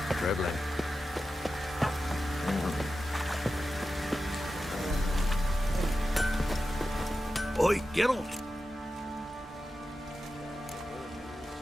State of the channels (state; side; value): normal; both; correlation 0.92